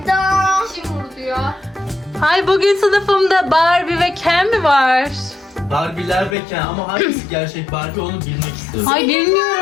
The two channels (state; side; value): drops out; right; at 6.4 s